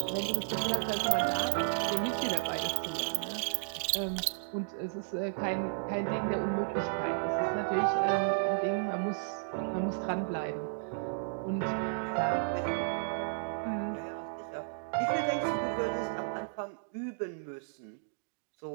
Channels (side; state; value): left; silent; digital silence